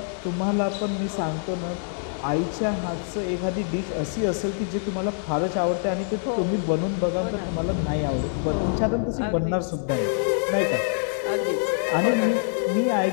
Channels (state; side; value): silent; right; 62 dB below the other